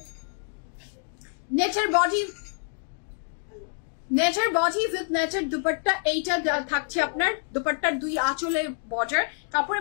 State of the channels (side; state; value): right; silent; 60 dB below the other